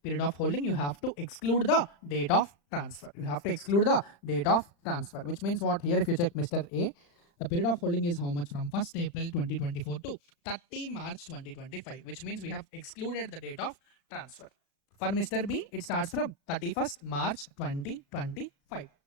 period of holding, you have to exclude the date of transfer. Which means what? Here if you check Mr. A, the period of holding is how much? From 1st April 2024 to 30 March 2025, which means we have excluded the date of transfer. For Mr. B, it starts from 31st March 2025.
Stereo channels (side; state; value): right; late; 35 ms